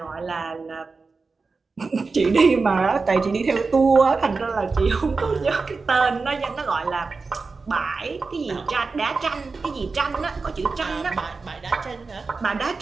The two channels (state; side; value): quieter; left; 4.2 dB